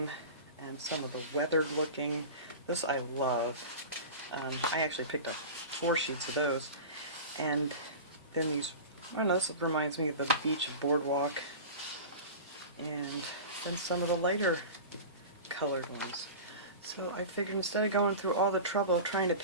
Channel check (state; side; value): inverted; both; correlation -0.32